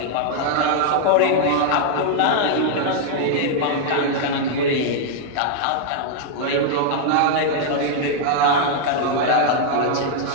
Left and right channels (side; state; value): both; different; correlation -0.01